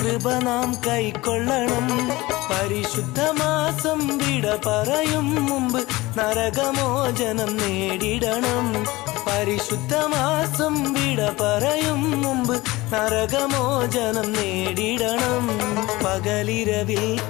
നാം കൈക്കൊള്ളണം. പരിശുദ്ധ മാസം വിട പറയും മുമ്പ് നരകമോചനം നേടിടണം. പരിശുദ്ധ മാസം വിട പറയും മുമ്പ് നരകമോചനം നേടിടണം. പകലിരവിൽ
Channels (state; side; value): quieter; right; 20.2 dB